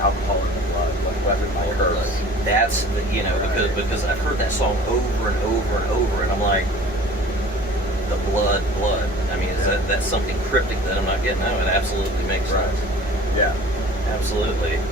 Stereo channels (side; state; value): both; normal; correlation 0.44